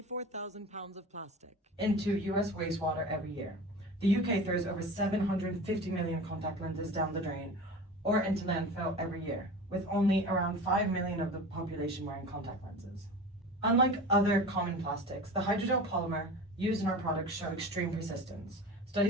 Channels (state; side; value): normal; both; correlation 0.34